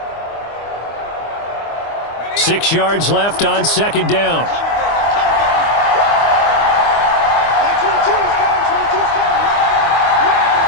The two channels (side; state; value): right; late; 25 ms